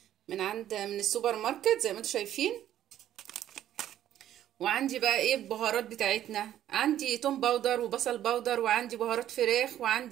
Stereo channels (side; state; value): left; quieter; 11.7 dB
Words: من السوبر ماركت زي ما انتم شايفين. وعندي بقى ايه البهارات بتاعتنا؟ عندي توم باودر وبصل باودر، وعندي بهارات فراخ،